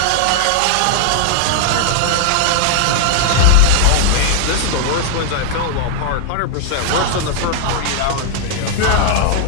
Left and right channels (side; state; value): both; different; correlation 0.00